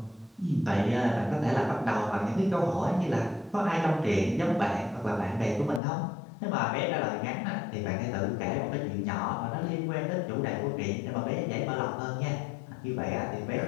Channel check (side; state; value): right; drops out; at 5.8 s